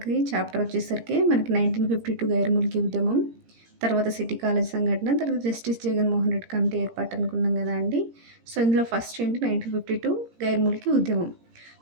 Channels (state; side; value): late; left; 17 ms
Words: చాప్టర్ వచ్చేసరికి మనకి 1952 గైర్ ముల్కీ ఉద్యమం, తర్వాత సిటీ కాలేజ్ సంఘటన, తర్వాత జస్టిస్ జగన్మోహన్ రెడ్డి కమిటీ ఏర్పాటు అనుకున్నాం కదా అండి. సో ఇందులో ఫస్ట్ ఏంటి 1952 గైర్ ముల్కీ ఉద్యమం.